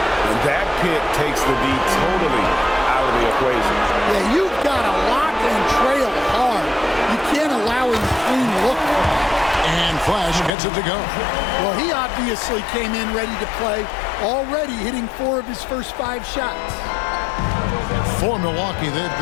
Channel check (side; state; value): right; drops out; at 10.5 s